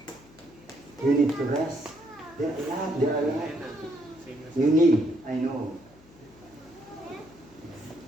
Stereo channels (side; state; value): left; noise; hum, 25 dB below the sound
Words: You need to rest. There are a lot. You need, I know.